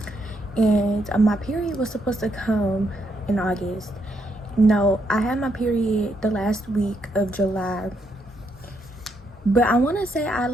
And my period was supposed to come in August. No, I had my period the last week of July. But I want to say I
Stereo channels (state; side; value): normal; both; correlation 0.77